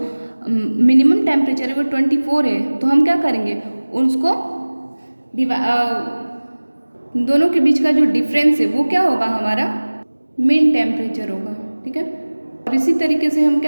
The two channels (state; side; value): inverted; both; correlation -1.00